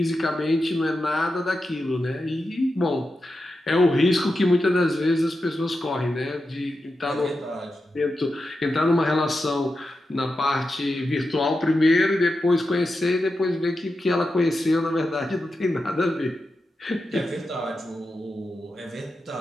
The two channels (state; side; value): normal; both; correlation 0.89